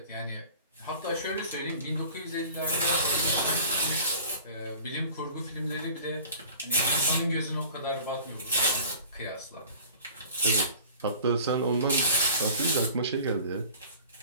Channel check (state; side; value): inverted; both; correlation -0.44